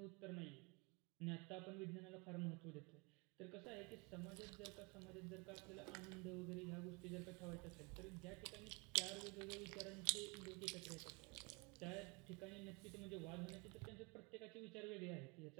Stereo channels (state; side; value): quieter; left; 29.3 dB